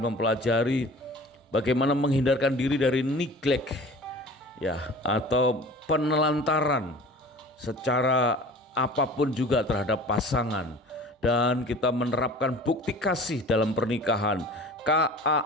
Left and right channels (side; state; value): both; normal; correlation 0.42